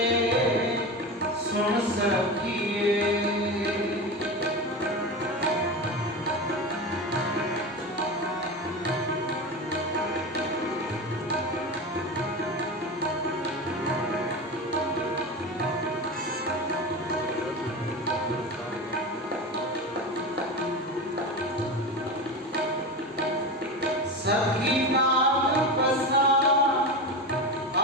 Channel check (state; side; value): normal; both; correlation 0.24